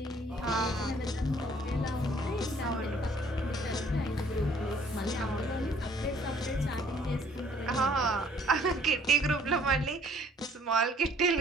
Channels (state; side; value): normal; both; correlation 0.60